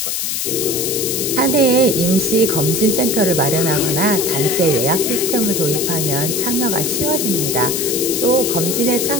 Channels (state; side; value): noise; left; hiss, 1 dB below the sound